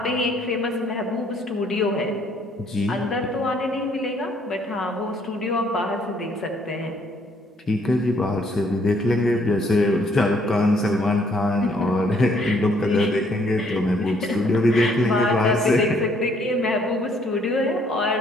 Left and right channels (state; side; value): normal; both; correlation 0.65